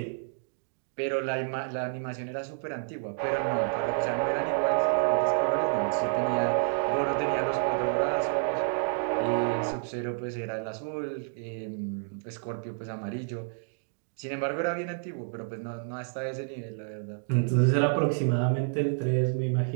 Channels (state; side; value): silent; left; digital silence